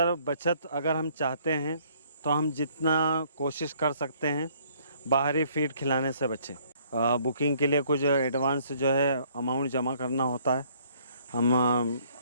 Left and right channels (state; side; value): inverted; both; correlation -0.62